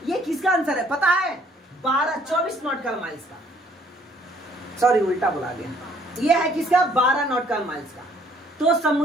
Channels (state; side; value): normal; both; correlation 0.62